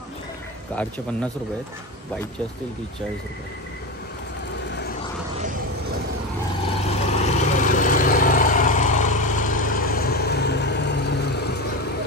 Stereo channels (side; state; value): both; normal; correlation 0.20